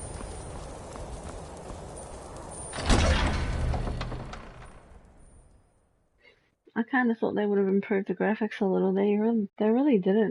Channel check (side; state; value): both; identical; correlation 1.00